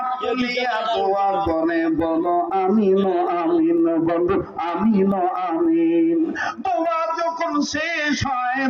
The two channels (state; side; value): identical; both; correlation 1.00